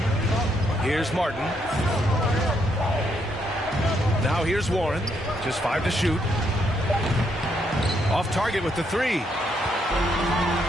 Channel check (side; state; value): both; normal; correlation 0.75